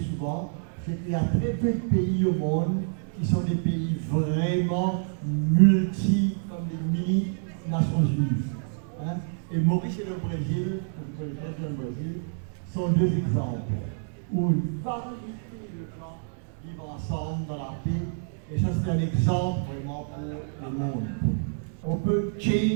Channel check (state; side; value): silent; left; digital silence